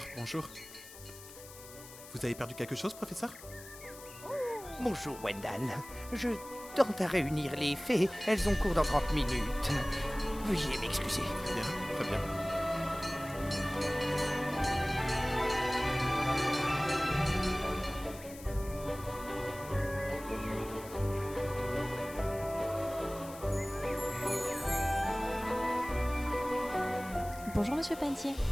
bonjour. Vous avez perdu quelque chose, professeur? Bonjour, Wendell. Je tente à réunir les fées. Elles ont cours dans 30 minutes. Veuillez m'excuser. Très bien, très bien. Bonjour Monsieur Pantier.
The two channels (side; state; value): left; noise; hiss, 17 dB below the sound